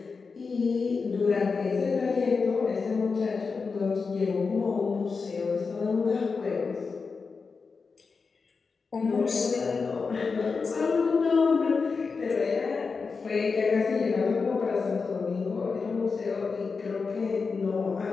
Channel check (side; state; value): right; quieter; 4.8 dB